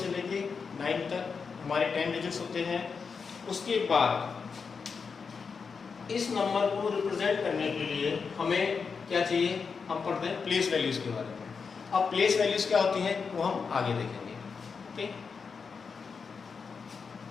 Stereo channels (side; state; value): right; quieter; 5.5 dB